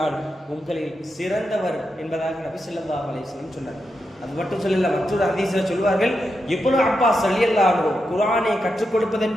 உங்களில் சிறந்தவர் என்பதாக நபி ஸல்லல்லாஹு அலைஹி வஸல்லம் சொன்னார். அது மட்டும் சொல்லல, மற்றொரு ஹதீஸ்ல சொல்வார்கள், இப்னு அப்பாஸ் ரலியல்லாஹு அன்ஹு குர்ஆனை கற்றுக் கொடுப்பது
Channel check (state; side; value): normal; both; correlation 0.86